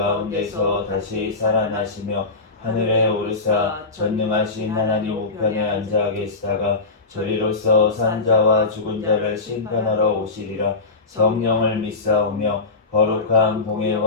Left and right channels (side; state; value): right; quieter; 3.7 dB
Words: 다시 살아나시며 하늘에 오르사 전능하신 하나님 우편에 앉아 계시다가 저리로서 산 자와 죽은 자를 심판하러 오시리라. 성령을 믿사오며 거룩한